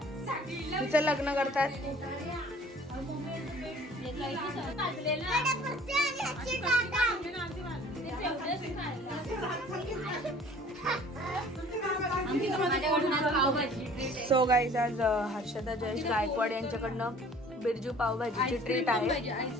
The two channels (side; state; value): both; normal; correlation 0.51